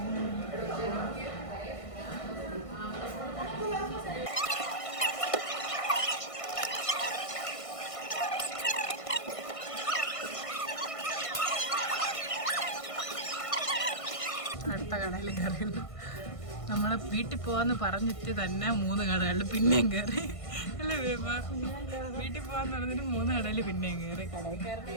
അടുത്ത കടയിൽ കയറി. നമ്മൾ വീട്ടിൽ പോവാന്ന് പറഞ്ഞിട്ട് തന്നെ 3 കടകളിൽ പിന്നെയും കയറി അല്ലേ വേമ? വീട്ടിൽ പോവാന്ന് പറഞ്ഞിട്ട് 3 കടയിൽ പിന്നെയും കയറി.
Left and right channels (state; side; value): late; right; 1.5 ms